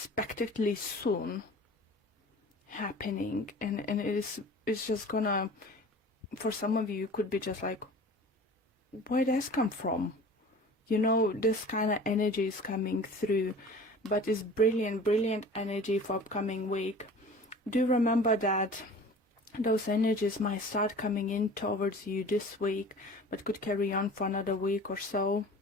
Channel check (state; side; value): normal; both; correlation 0.42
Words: soon happening, and it's just gonna, for some of you, could be just like, where does come from? You know, this kind of energy is coming through, but it's brilliant energy for upcoming week. Do remember that those energies might start coming in towards you this week, but could carry on for another week or so.